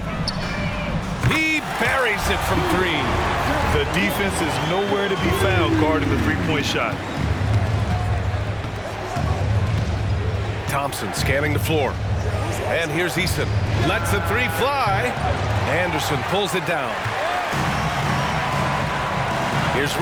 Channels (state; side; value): identical; both; correlation 1.00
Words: He buries it from 3. The defense is nowhere to be found guarding the three-point shot. Thompson scanning the floor. And here's Eason. Lets the 3 fly. Anderson pulls it down. Here's